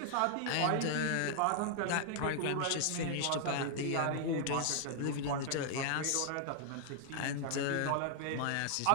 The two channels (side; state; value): both; different; correlation -0.01